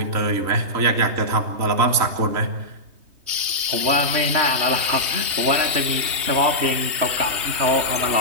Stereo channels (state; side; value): late; left; 3.2 ms